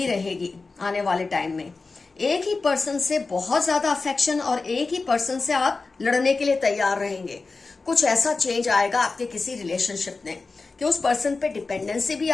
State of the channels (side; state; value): right; quieter; 4.0 dB